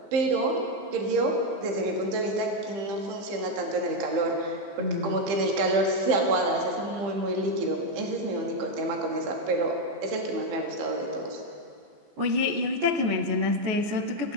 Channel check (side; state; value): left; late; 15 ms